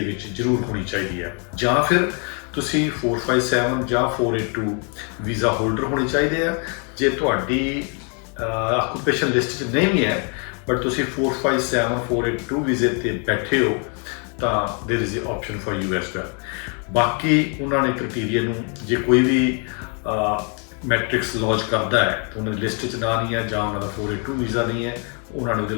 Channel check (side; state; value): right; quieter; 38.5 dB